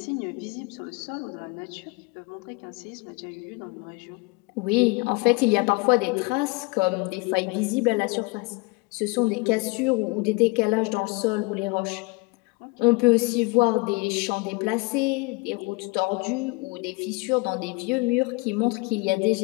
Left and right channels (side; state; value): right; quieter; 26.8 dB